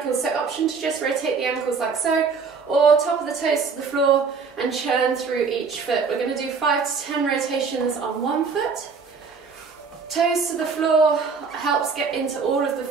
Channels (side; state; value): left; quieter; 5.1 dB